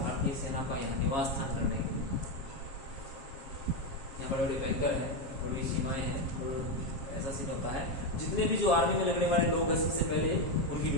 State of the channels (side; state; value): right; late; 7.3 ms